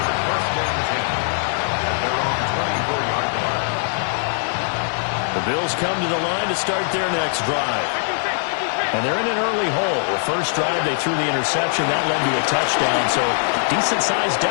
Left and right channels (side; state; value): right; silent; digital silence